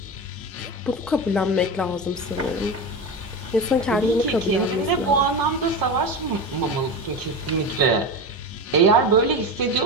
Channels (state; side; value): normal; both; correlation 0.22